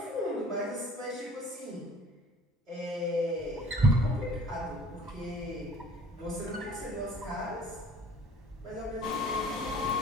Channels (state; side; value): normal; both; correlation 0.50